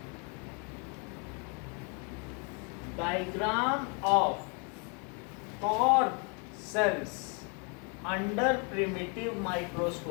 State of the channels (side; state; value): right; quieter; 36.2 dB